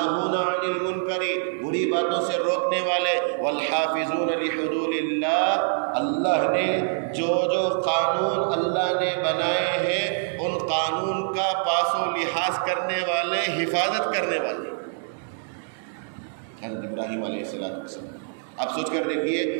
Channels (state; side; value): silent; left; digital silence